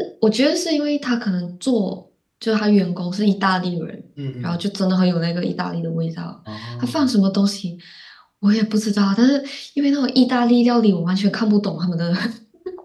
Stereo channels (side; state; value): both; identical; correlation 1.00